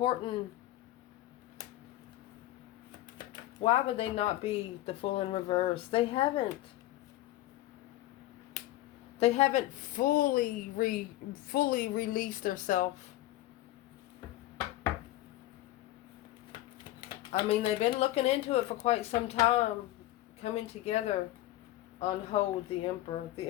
Why would they not be the Fool in reverse? They haven't fully released themselves. I mean, they've been looking into it for quite some time, coming together on hold. The Emperor. The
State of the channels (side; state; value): right; quieter; 16.0 dB